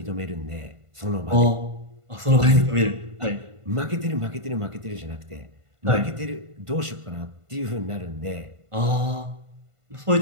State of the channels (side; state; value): left; late; 1.5 ms